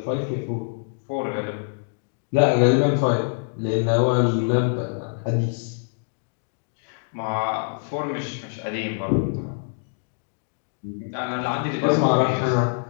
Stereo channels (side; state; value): right; silent; digital silence